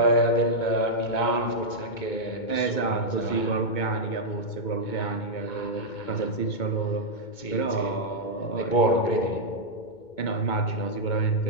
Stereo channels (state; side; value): late; right; 2.2 ms